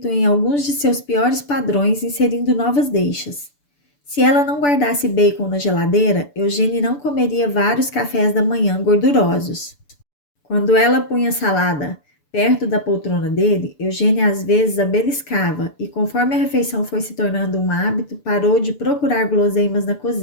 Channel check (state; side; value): late; right; 6.9 ms